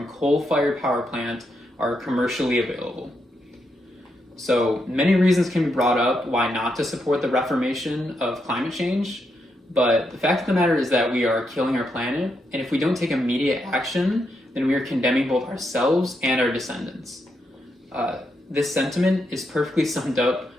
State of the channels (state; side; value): normal; both; correlation 0.81